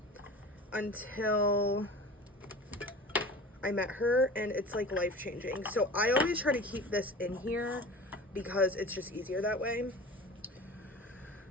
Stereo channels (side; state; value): both; normal; correlation 0.37